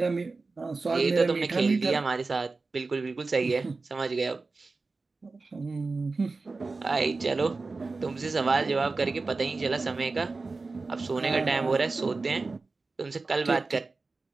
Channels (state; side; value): quieter; left; 3.8 dB